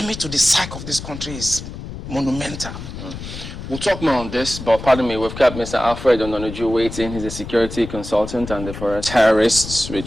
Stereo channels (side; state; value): left; noise; rumble, 10 dB below the sound